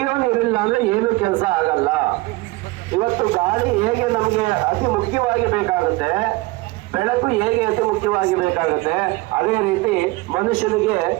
ನೀರಿಲ್ಲ ಅಂದ್ರೆ ಏನು ಕೆಲಸ ಆಗಲ್ಲ. ಇವತ್ತು ಗಾಳಿ ಹೇಗೆ ನಮಗೆ ಅತಿ ಮುಖ್ಯವಾಗಿ ಬೇಕಾಗುತ್ತೆ, ಬೆಳಕು ಹೇಗೆ ಅತಿ ಮುಖ್ಯವಾಗಿ ಬೇಕಾಗುತ್ತೆ, ಅದೇ ರೀತಿ ಮನುಷ್ಯನಿಗೆ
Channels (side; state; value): left; quieter; 21.7 dB